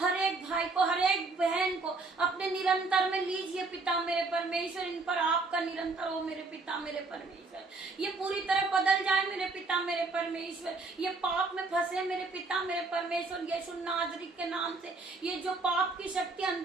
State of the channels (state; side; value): quieter; left; 3.7 dB